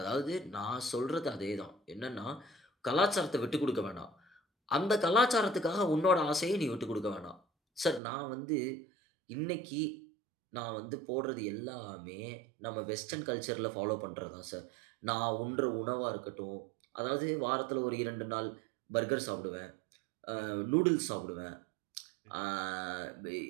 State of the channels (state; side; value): drops out; left; at 8.0 s